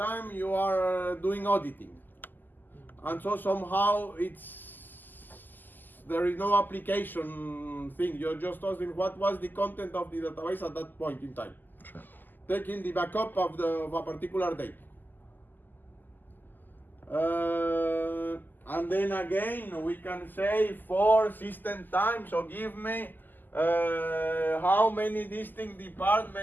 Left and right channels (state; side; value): late; right; 0.088 ms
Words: you are doing auditing. And so somehow there is no application thing. You're just asking what was the content of the database at that point in time. Sure. Taking the backup of a particular date. And then again, we can say for system time, so give me how many distinct